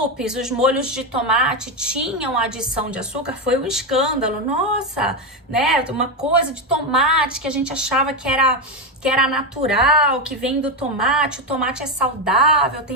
os molhos de tomate tinham adição de açúcar, foi um escândalo. Nossa, né? Uma coisa de tomate que a gente achava que era natural, que vem do tomate. O tomate é saudável,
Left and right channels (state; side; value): normal; both; correlation 0.10